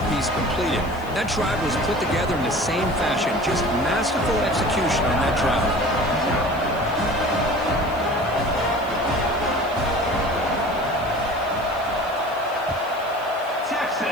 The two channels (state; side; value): noise; right; hiss, 23 dB below the sound